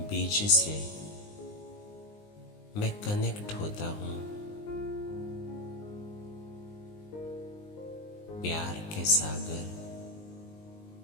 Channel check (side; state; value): right; late; 20 ms